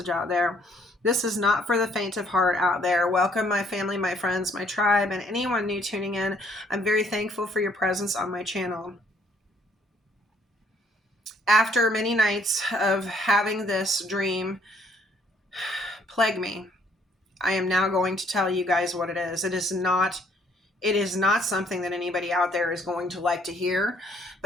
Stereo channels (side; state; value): both; normal; correlation 0.64